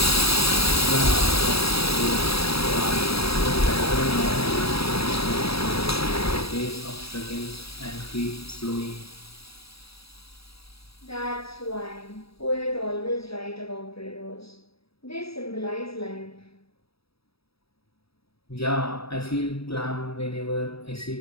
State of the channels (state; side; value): late; right; 0.77 ms